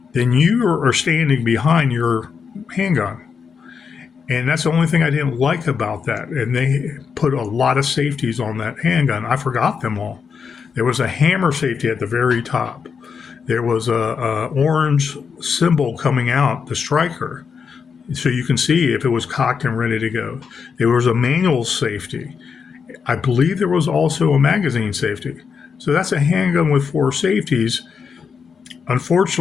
then you are standing behind your handgun. And that's the only thing I didn't like about that. And they put a lot of safeties on that handgun. I forgot them all. There was a hammer safety at the very top. There was a orange symbol coming out, the striker, so you can see if it was cocked and ready to go. There was a manual safety. I believe there was also a magazine safety. So that's a handgun with 4 safeties.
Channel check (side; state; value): right; quieter; 6.1 dB